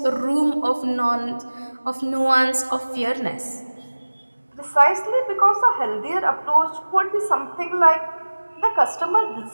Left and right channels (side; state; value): both; inverted; correlation -1.00